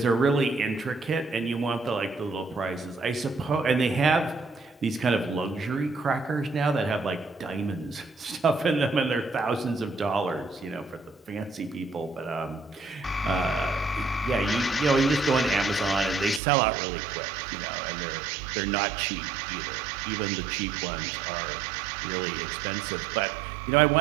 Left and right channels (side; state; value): left; drops out; at 16.4 s